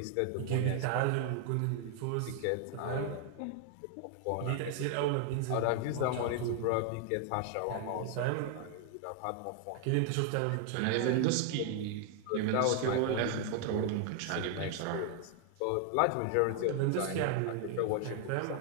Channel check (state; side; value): different; both; correlation 0.00